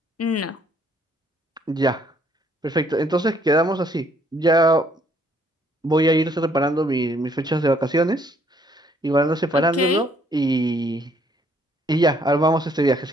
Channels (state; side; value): normal; both; correlation 0.65